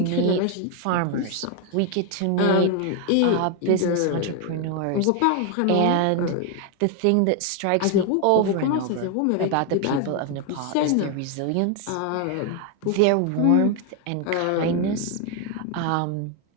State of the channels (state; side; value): different; both; correlation 0.00